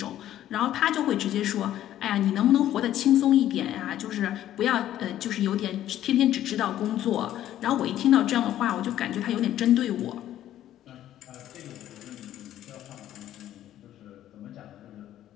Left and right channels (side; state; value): right; quieter; 12.3 dB